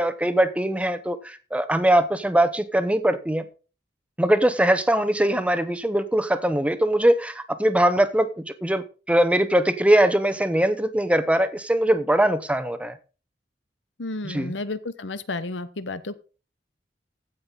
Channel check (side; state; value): both; normal; correlation 0.86